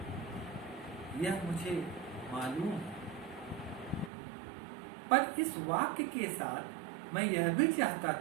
यह मुझे मालूम है। पर इस वाक्य के साथ मैं यह भी चाहता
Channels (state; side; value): drops out; left; at 4.1 s